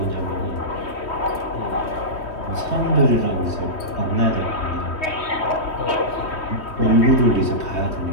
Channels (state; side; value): late; right; 3.1 ms